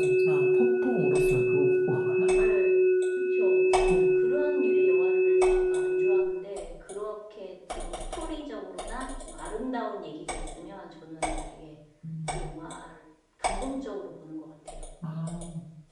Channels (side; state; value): both; identical; correlation 1.00